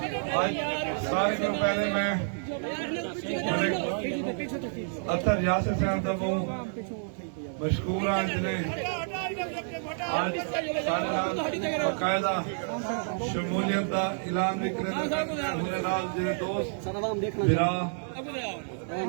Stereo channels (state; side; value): silent; left; digital silence